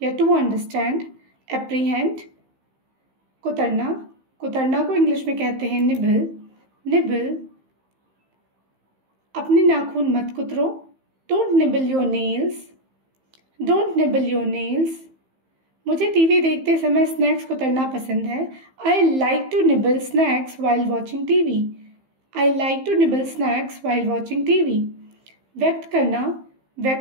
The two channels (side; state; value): left; late; 15 ms